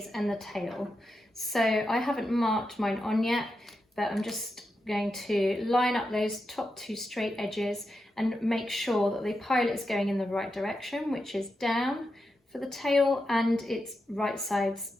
and the tail. So I haven't marked mine on yet, but I'm just going to line up those top 2 straight edges and make sure that the pilot is going in the right direction, which is down for the tail and its right sides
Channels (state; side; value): normal; both; correlation 0.87